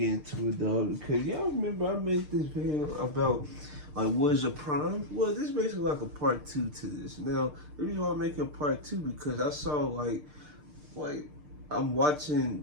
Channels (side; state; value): left; late; 6.6 ms